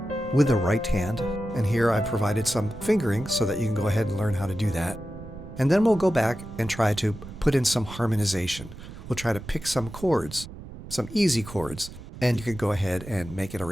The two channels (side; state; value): right; noise; rumble, 14 dB below the sound